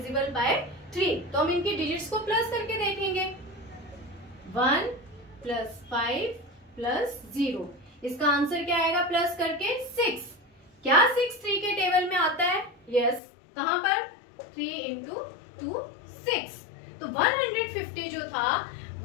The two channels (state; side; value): drops out; right; at 13.2 s